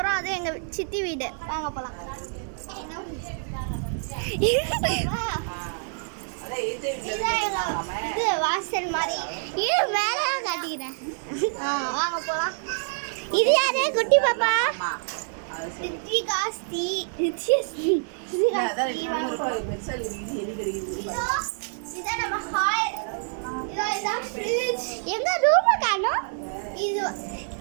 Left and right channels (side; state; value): left; silent; 60 dB below the other